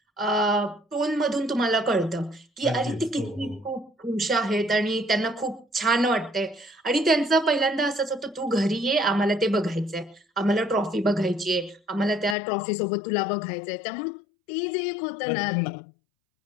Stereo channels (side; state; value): right; drops out; at 12.4 s